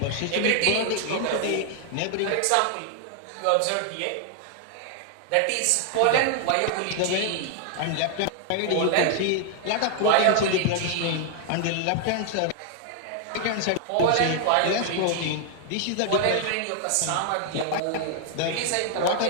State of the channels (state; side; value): different; both; correlation 0.00